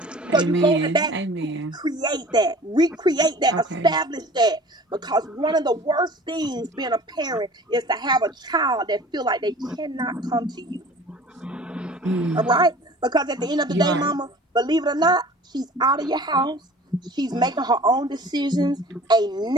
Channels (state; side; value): normal; both; correlation 0.44